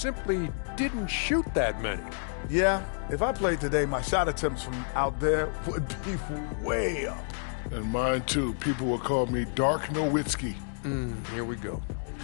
didn't shoot that many. Yeah, if I played today, my shot attempts from out there would be way up. And mine, too. People would call me Dark Nowitzki. Here we go.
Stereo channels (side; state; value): right; silent; digital silence